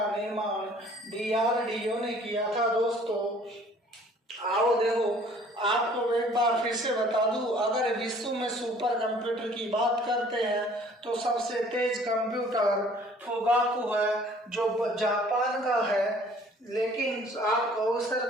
निर्माण DRDO ने किया था। दोस्तों आओ देखो, आपको एक बार फिर से बता दूं, अगर विश्व में सुपर कंप्यूटर की बात करते हैं तो सबसे तेज कंप्यूटर फुगाकू है, जो जापान का है। लेकिन आप कहो सर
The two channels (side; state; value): both; normal; correlation 0.54